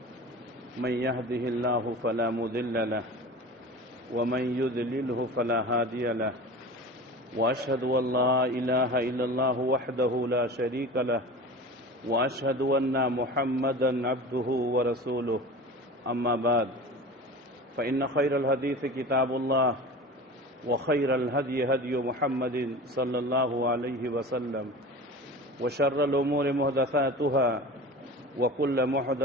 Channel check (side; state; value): both; normal; correlation 0.35